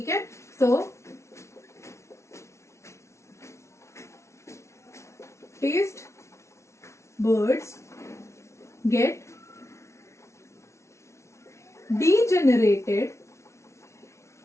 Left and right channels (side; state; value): right; late; 0.13 ms